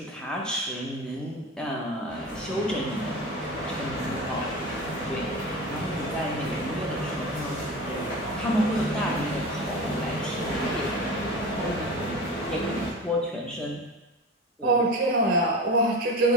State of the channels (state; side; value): normal; both; correlation 0.30